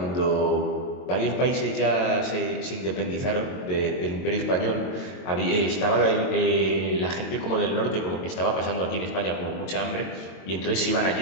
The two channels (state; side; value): late; right; 22 ms